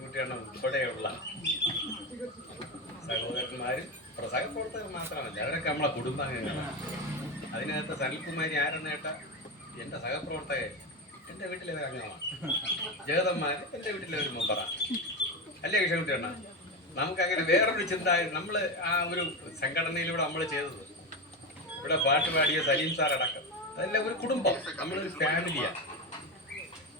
ഉൾപ്പെടെയുള്ള സഹോദരന്മാരും സഹപ്രവർത്തകർ മാത്രമല്ല, അവരൊക്കെ നമ്മളെ കുടുംബാംഗങ്ങളാണ്. അതിനകത്ത് സനിൽകുമാരി ആരെന്ന് കേട്ടാൽ എൻ്റെ സഹപ്രവർത്തകർ എൻ്റെ വീട്ടിലെ ഒരു അംഗമാണ്. ജഗതന്മാർ എൻ്റെ വീട്ടിലെ ഒരു മെമ്പറാണ്. അല്ലേ കിഴൻകുട്ടിയാണ്? നമുക്കങ്ങനെ വേറൊരു ചിന്ത, നമ്മൾ ആ ഒരു സംഘടനയിലൂടെ നമ്മൾ ചെയ്തത്, ഇവിടെ പാട്ട് പാടിയ സലീം സാർ അടക്കം, അതെല്ലാം ഒരു കുടുംബം, നമ്മളൊരു ഫാമിലിയാണ്.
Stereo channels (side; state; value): both; normal; correlation 0.17